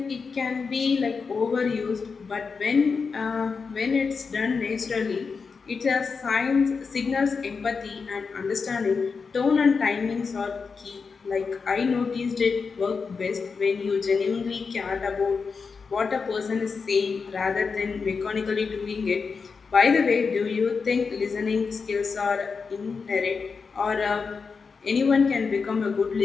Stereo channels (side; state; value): right; quieter; 5.1 dB